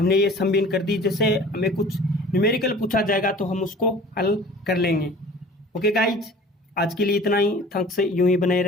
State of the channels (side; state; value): both; normal; correlation 0.45